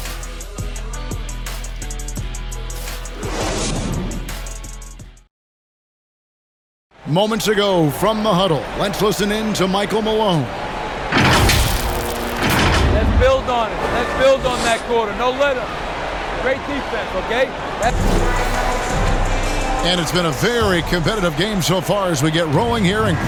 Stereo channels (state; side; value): identical; both; correlation 1.00